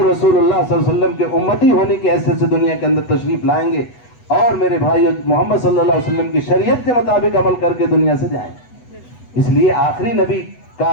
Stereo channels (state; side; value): late; right; 8.1 ms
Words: رسول اللہ صلی اللہ علیہ وسلم کے امتی ہونے کی حیثیت سے دنیا کے اندر تشریف لائیں گے، اور میرے بھائیو محمد صلی اللہ علیہ وسلم کی شریعت کے مطابق عمل کر کے دنیا سے جائیں. اس لیے آخری نبی کا